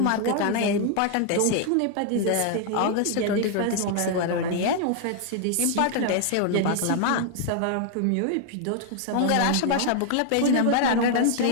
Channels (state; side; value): different; both; correlation 0.00